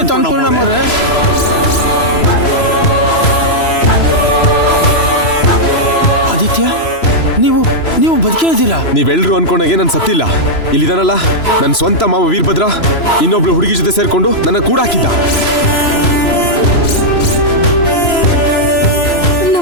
ಅನ್ಕೊಂಡ್ರೆ? ಆದಿತ್ಯ, ನೀವು ಬದುಕೇ ಇದ್ದೀರಾ? ನೀವೆಲ್ರು ಅನ್ಕೊಂಡಾಗೆ ನಾನು ಸತ್ತಿಲ್ಲ. ಇಲ್ಲಿದಾನಲ್ಲ ನನ್ನ ಸ್ವಂತ ಮಾವ ವೀರಭದ್ರ ಇನ್ನೊಬ್ಳು ಹುಡುಗಿ ಜೊತೆ ಸೇರ್ಕೊಂಡು ನನ್ನ ಕೂಡ ಹಾಕಿದ್ದ.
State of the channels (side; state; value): right; late; 3.0 ms